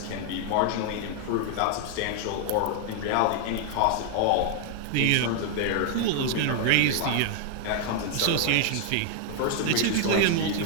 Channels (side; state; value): both; different; correlation 0.00